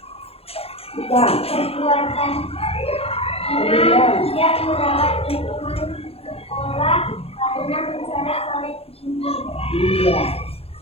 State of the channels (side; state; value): right; late; 0.29 ms